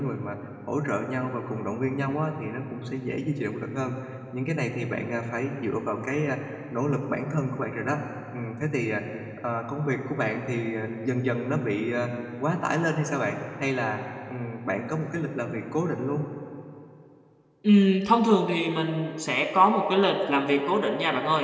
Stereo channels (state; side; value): identical; both; correlation 1.00